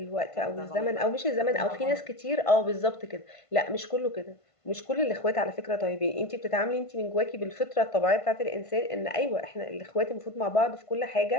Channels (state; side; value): late; right; 1.5 ms